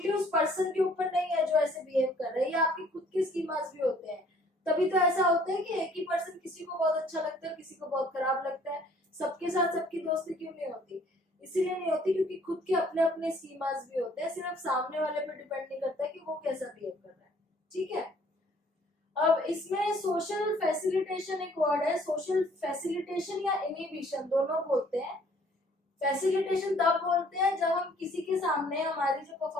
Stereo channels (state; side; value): normal; both; correlation 0.59